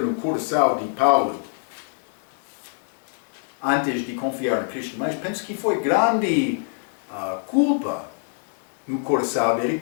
coração de Paulo antes de confiar em Cristo, mas penso que foi grande culpa no coração dele.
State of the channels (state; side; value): silent; right; digital silence